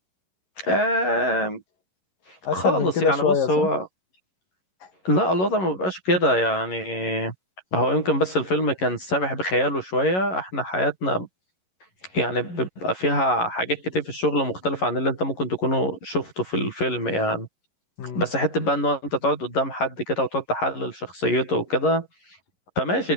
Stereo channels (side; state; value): right; late; 11 ms